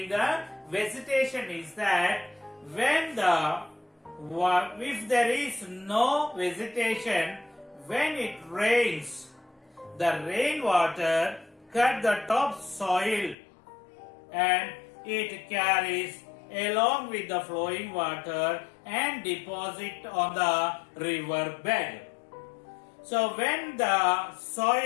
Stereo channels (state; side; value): drops out; right; at 13.4 s